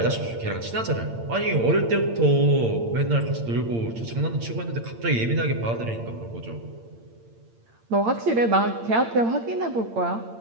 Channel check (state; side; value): late; left; 8.8 ms